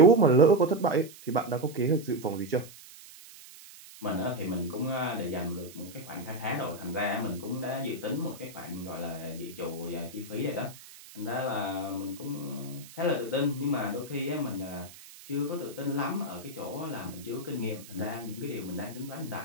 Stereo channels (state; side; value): noise; right; hiss, 18 dB below the sound